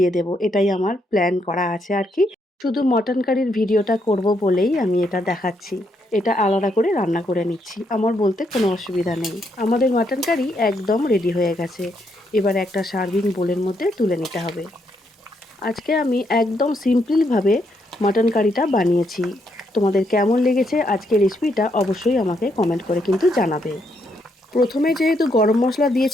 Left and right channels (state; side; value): normal; both; correlation 0.76